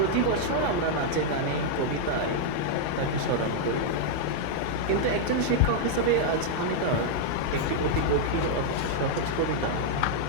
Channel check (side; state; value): both; different; correlation -0.01